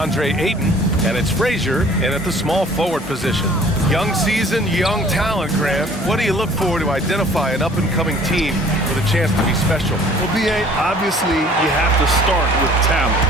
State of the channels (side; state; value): both; normal; correlation 0.52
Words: Ayton, and it's Frazier in at the small forward position. Young season, young talent, Grant. What do you look for to identify an up-and-coming team with a chance to be special? Well, B.A., obviously you have to start with talent.